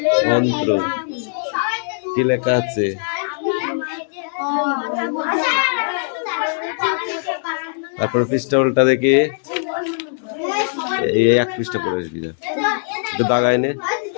অন্ত্র কি লেখা আছে? তারপর পৃষ্ঠা উল্টা দেখি, এই এক পৃষ্ঠা পড়ে আসবি না, একটু দাগাই নে।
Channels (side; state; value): right; silent; digital silence